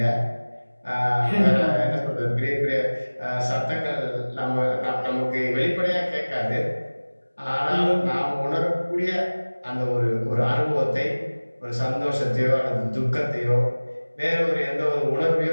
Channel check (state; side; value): inverted; both; correlation -1.00